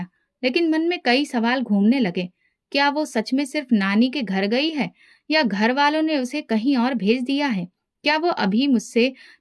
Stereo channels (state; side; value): identical; both; correlation 1.00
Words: लेकिन मन में कई सवाल घूमने लगे। क्या वो सच में सिर्फ नानी के घर गई है, या घर वालों ने उसे कहीं और भेज दिया है? क्या वो अभी मुझसे